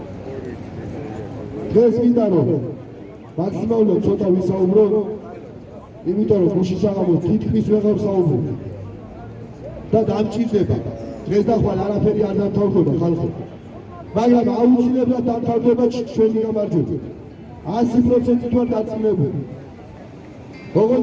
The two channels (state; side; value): identical; both; correlation 1.00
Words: დღეს მინდა რომ მაქსიმალურად ცოტა ვისაუბრო, იმიტომ რომ გუშინ საღამოს თითქმის ვეღარ საუბრობ. და დამჭირდება. დღეს და ხვალ არაფერი არ დამთავრდება ხალხო. მაგრამ აუცილებლად დამთავრდება ჩვენი გამარჯვება. 100% ვარ დაწინებული.